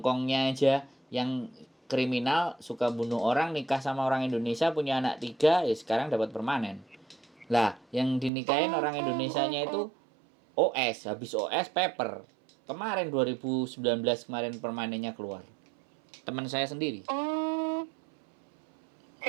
aja yang kriminal suka bunuh orang, nikah sama orang Indonesia, punya anak 3, ya sekarang dapat permanen. Lah, yang dinikahin orang Indonesianya itu OS, habis OS paper. Kemarin 2019 kemarin permanennya keluar. Teman saya sendiri. Oh.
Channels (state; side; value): drops out; left; at 8.3 s